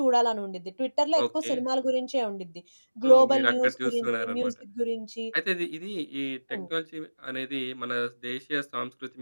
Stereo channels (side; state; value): both; inverted; correlation -1.00